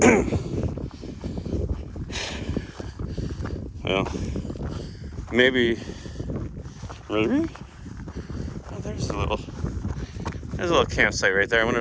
Well, maybe. Really? Oh, there's a little campsite right there. I wonder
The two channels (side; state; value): both; identical; correlation 1.00